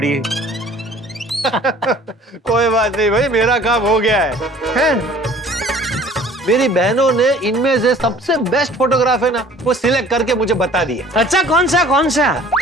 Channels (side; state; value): both; normal; correlation 0.51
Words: कोई बात नहीं भाई, मेरा काम हो गया है? मेरी बहनों ने इनमें से सबसे बेस्ट फोटोग्राफ है ना, वो सिलेक्ट करके मुझे बता दिया। अच्छा, कौन सा कौन सा?